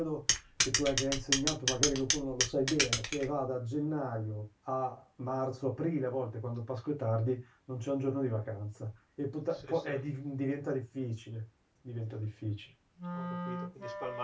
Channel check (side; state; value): both; identical; correlation 1.00